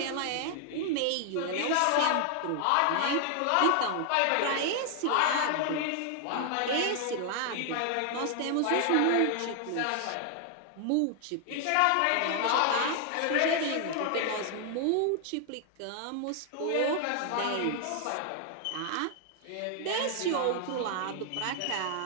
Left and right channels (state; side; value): different; both; correlation 0.00